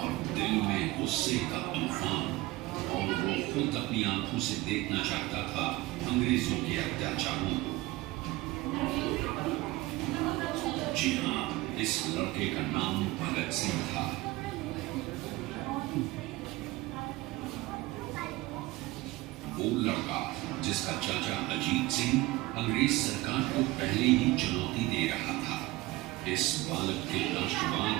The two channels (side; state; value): left; quieter; 19.4 dB